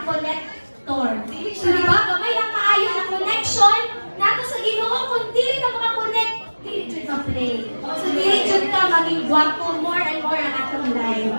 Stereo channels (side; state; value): both; inverted; correlation -1.00